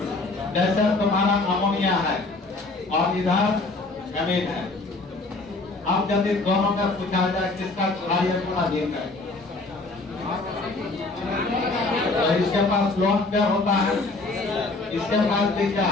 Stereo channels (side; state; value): right; quieter; 3.3 dB